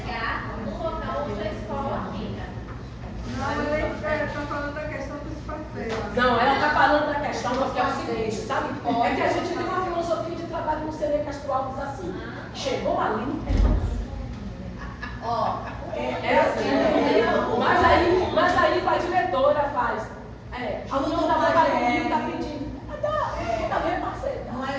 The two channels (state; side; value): identical; both; correlation 1.00